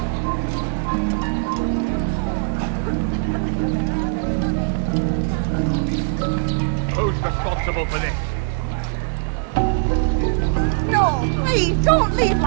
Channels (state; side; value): silent; left; digital silence